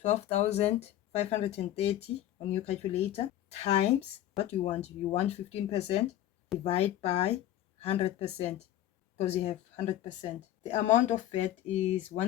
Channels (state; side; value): quieter; right; 12.6 dB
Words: 12,530 on your calculator times what you want. You want 15%, divide by 100% because you have 100%. The amount of VAT is